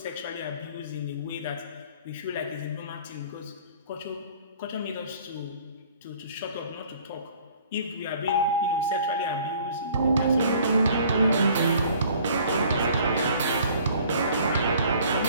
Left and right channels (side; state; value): both; inverted; correlation -0.54